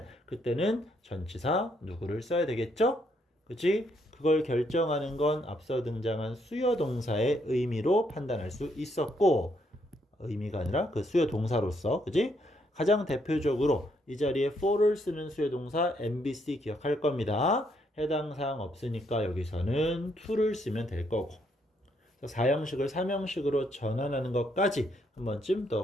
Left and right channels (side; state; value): both; normal; correlation 0.73